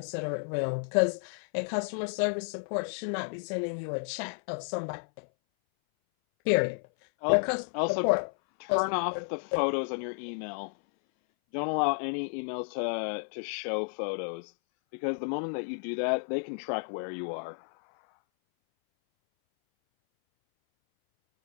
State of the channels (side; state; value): right; silent; 57 dB below the other